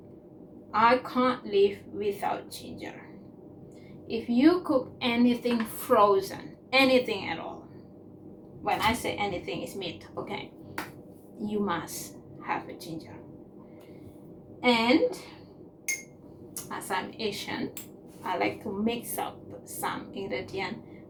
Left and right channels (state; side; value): identical; both; correlation 1.00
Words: I can't live without ginger. if you cook anything frozen, anything at all, when I say anything is meat, okay, you must have a ginger. And as I'm Asian, I like to mix up some ingredient.